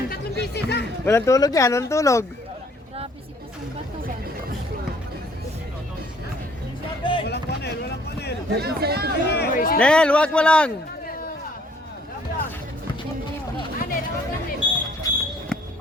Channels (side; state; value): both; normal; correlation 0.61